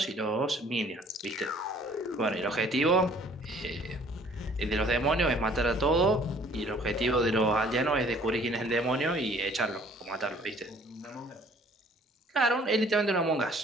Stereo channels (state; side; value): normal; both; correlation 0.57